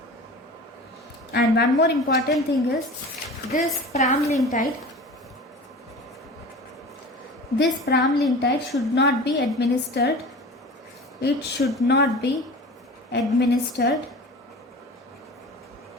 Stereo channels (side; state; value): both; normal; correlation 0.37